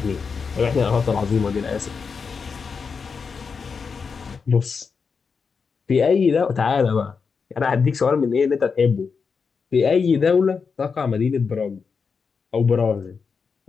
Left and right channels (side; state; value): right; quieter; 5.5 dB